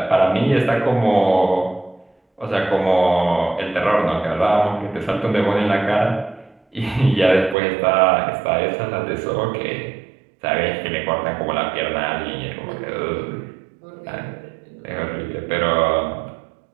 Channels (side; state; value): left; drops out; at 7.6 s